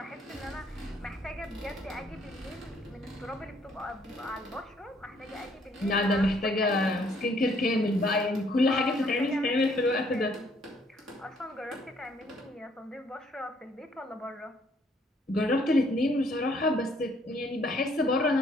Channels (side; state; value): both; normal; correlation 0.65